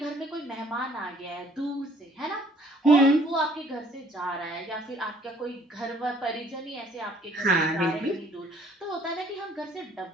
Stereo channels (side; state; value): both; normal; correlation 0.60